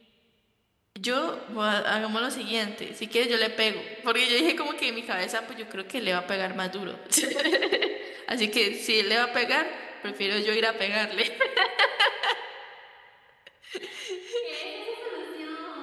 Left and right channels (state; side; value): identical; both; correlation 1.00